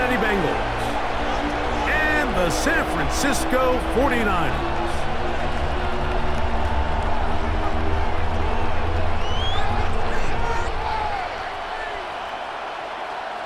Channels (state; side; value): identical; both; correlation 1.00